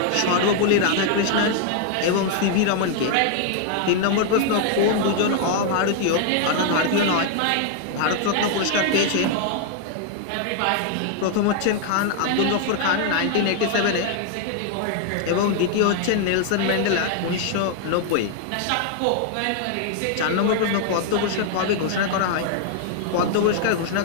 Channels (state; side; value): different; both; correlation 0.00